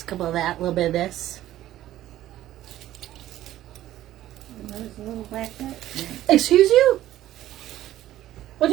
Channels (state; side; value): quieter; left; 13.7 dB